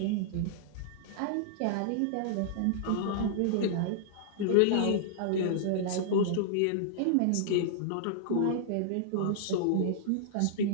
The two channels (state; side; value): different; both; correlation -0.01